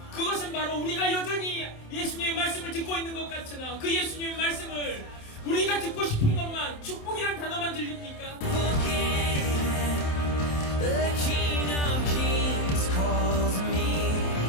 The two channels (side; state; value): right; late; 27 ms